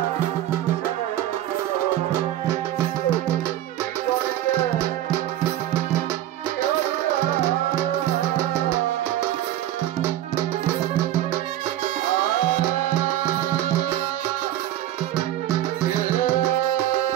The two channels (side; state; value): left; quieter; 13.1 dB